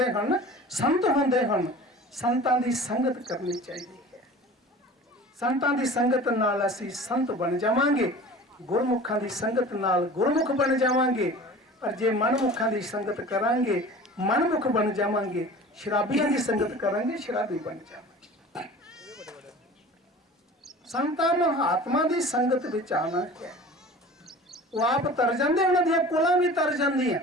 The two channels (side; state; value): both; normal; correlation 0.41